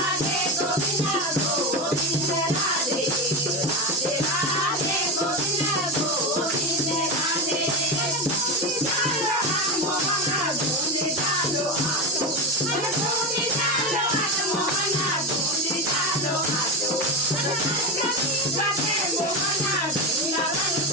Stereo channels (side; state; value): both; normal; correlation 0.17